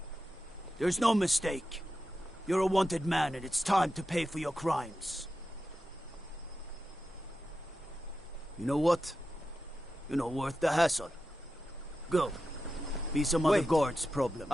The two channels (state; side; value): normal; both; correlation 0.91